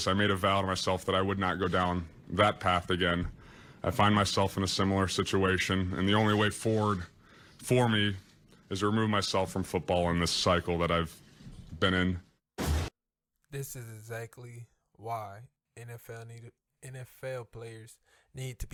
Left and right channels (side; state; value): both; identical; correlation 1.00